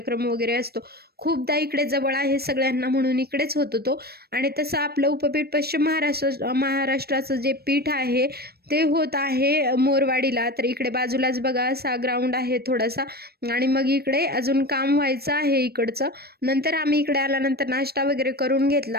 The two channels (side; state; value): left; late; 0.46 ms